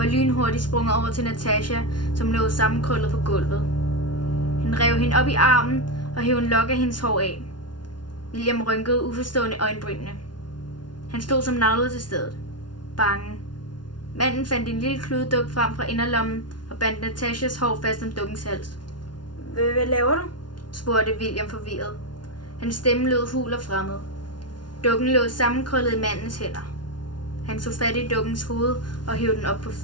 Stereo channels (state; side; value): late; right; 0.70 ms